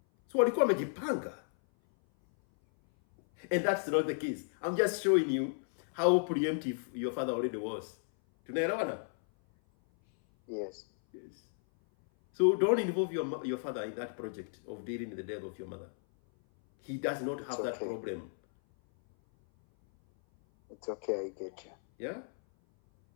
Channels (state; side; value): silent; right; 56 dB below the other